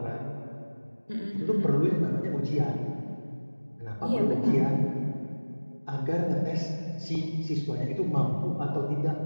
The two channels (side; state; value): both; inverted; correlation -1.00